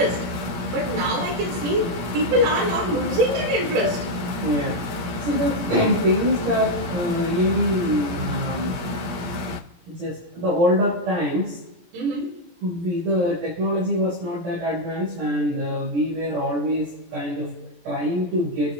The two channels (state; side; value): late; left; 17 ms